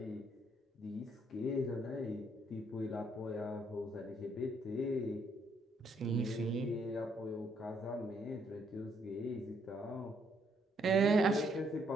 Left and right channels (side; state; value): both; normal; correlation 0.70